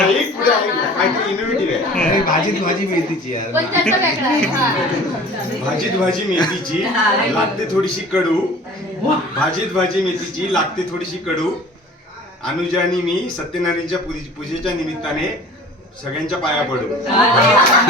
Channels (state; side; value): normal; both; correlation 0.45